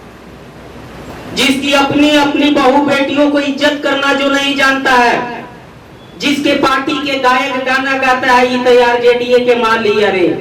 जिसकी अपनी बहू बेटियों को इज्जत करना जो नहीं जानता है, जिसके पार्टी के गायक गाना गाता है, ये तैयार जेडीए के मान लिया रे।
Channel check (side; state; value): both; identical; correlation 1.00